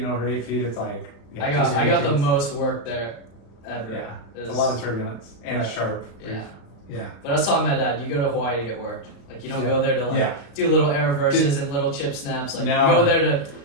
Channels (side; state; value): right; late; 35 ms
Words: over 8 feet, it's like I got the intense. most work there ever. Yeah, It it's a was- lot of turbulence and it's Right. sharp. Yeah. Yeah. But I was telling my dad, you go to Hawaii to get worked. Like you don't Yeah. go there to like Yeah. do little air reverses and little chip snaps. Like No. you go there to